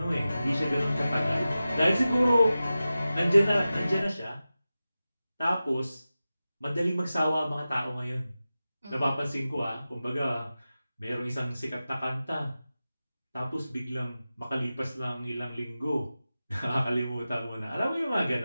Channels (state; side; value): inverted; both; correlation -0.94